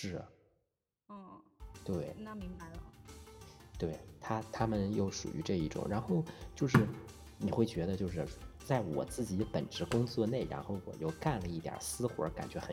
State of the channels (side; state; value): both; identical; correlation 1.00